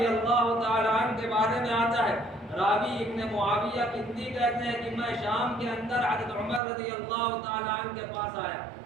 اللہ تعالیٰ عنہ کے بارے میں آتا ہے, راوی ابن معاویہ کندی کہتے ہیں کہ میں شام کے اندر حضرت عمر رضی اللہ تعالیٰ عنہ کے پاس آیا.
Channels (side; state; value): left; drops out; at 6.6 s